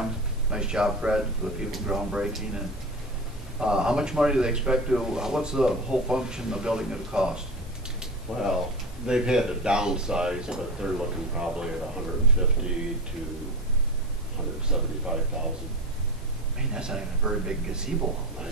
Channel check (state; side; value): normal; both; correlation 0.27